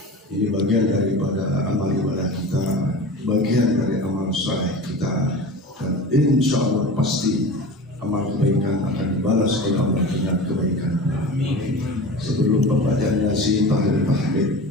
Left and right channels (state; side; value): normal; both; correlation 0.33